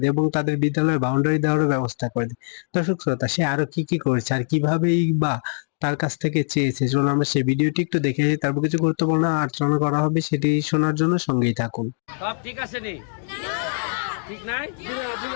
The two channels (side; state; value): right; silent; 64 dB below the other